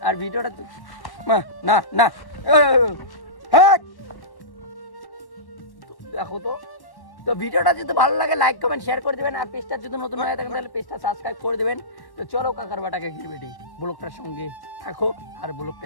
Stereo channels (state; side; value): late; right; 1.1 ms